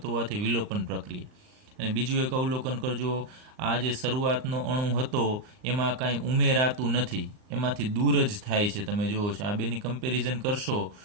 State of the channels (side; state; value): left; late; 39 ms